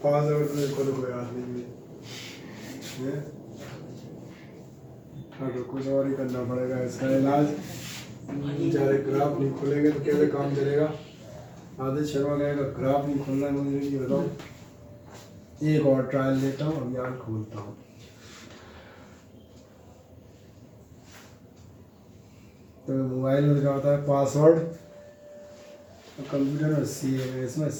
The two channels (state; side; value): identical; both; correlation 1.00